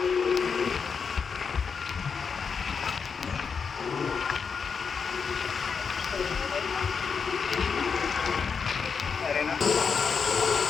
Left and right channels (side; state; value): right; quieter; 5.8 dB